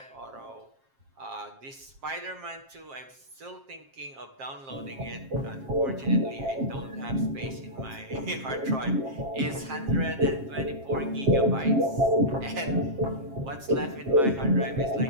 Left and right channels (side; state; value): left; late; 7.5 ms